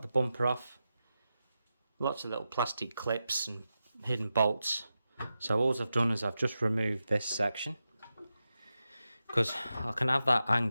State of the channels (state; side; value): inverted; both; correlation -0.90